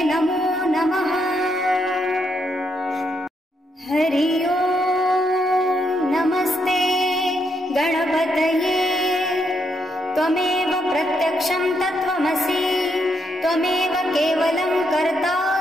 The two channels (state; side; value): normal; both; correlation 0.78